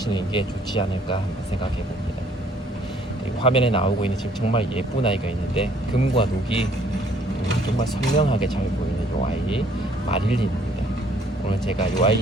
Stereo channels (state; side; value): normal; both; correlation 0.61